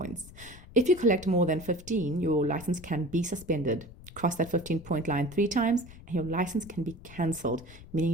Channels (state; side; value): noise; left; rumble, 18 dB below the sound